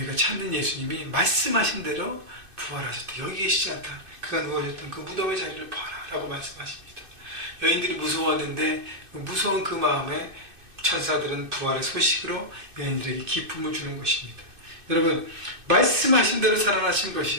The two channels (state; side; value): late; left; 2.6 ms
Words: 찾는 예수님이 말씀하신 대로 부활하셨다. 여기 계시지 않다. 그가 누워졌던 그 무덤의 자리를 봐라 라고 말씀하십니다. 여인들이 무서웠는데 무서운 그 마음에 천사들은 부활의 소식으로 여인들에게 기쁨을 주는 것입니다. 여러분, 말씀하신 대로 살아나신